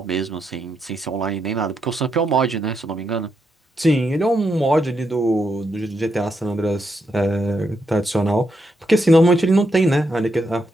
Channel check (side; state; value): both; normal; correlation 0.81